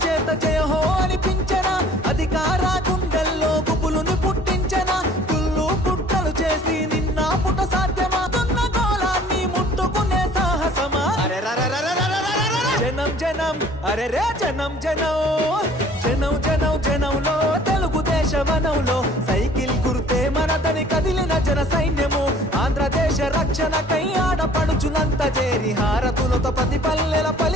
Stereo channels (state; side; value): normal; both; correlation 0.52